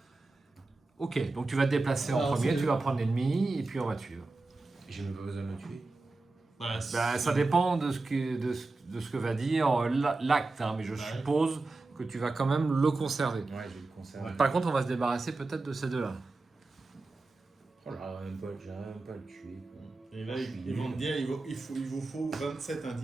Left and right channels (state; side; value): quieter; left; 3.4 dB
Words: Ok, donc tu vas te déplacer en Alors, premier, c'est- tu vas prendre l'ennemi et puis on va te suivre. J'ai même pas besoin de le tuer. Bah, Ça dépend de ce que va dire l'acte, hein, mais je suppose que tu vas quand même le conserver. Ouais, je vais le conserver. Ouais. Par contre, on va se débarrasser peut-être de ces deux-là. Oh là, j'arrive même pas à le tuer. Quoi. Et là, ils vont te dire, il vous faut 27